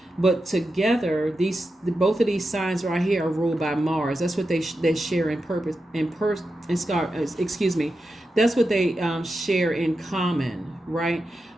But together, both of these signs right here are ruled by Mars. That's what they share in purpose excuse me. That's what they share in common, right?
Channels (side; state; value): both; normal; correlation 0.89